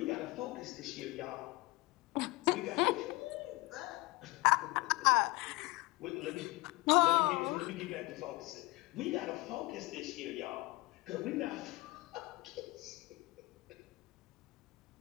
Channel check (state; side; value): quieter; right; 21.9 dB